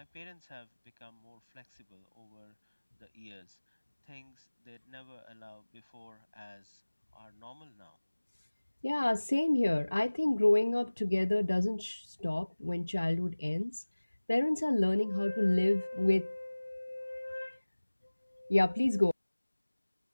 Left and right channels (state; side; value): inverted; both; correlation -1.00